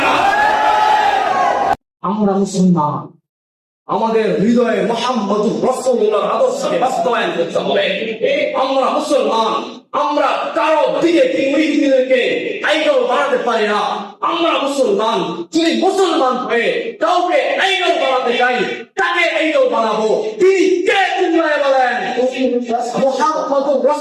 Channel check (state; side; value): identical; both; correlation 1.00